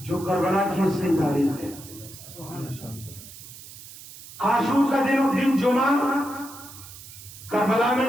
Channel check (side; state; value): right; noise; hiss, 16 dB below the sound